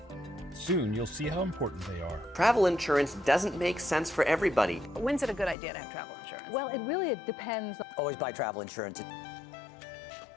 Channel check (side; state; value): right; drops out; at 5.6 s